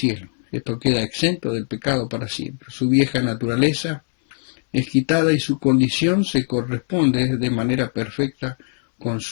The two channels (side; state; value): right; silent; 65 dB below the other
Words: Esto queda exento del pecado para siempre. Su vieja naturaleza es quitada y su condición se corresponde de manera perfecta con